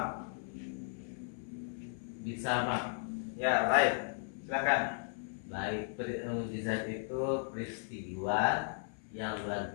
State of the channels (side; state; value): right; silent; 54 dB below the other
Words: Bisa Pak. Ya, baik. Silakan. Baik, mukjizat itu peristiwa yang luar